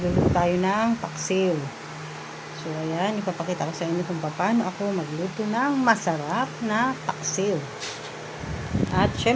tayo ng paksiw. So ayan, ipapakita ko sa inyo kung paano ako magluto ng masarap na paksiw. At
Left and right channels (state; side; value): identical; both; correlation 1.00